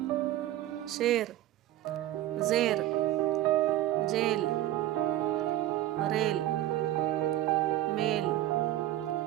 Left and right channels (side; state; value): left; quieter; 14.2 dB